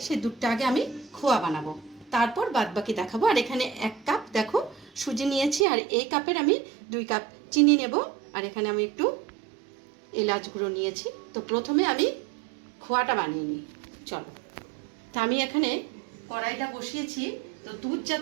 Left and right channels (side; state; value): left; drops out; at 5.7 s